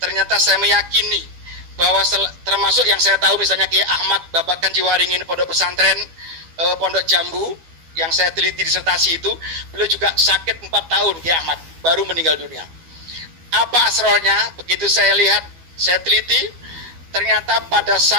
ternyata saya meyakini bahwa termasuk yang saya tahu misalnya Kiai Ahmad Babakan Jiwaringin, pondok pesantren Pondok Jambu yang saya teliti disertasi itu, beliau juga sakit 4 tahun Kiai Ahmad, baru meninggal dunia. Apa asrornya? Begitu saya lihat, saya teliti, ternyata pada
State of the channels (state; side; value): late; left; 12 ms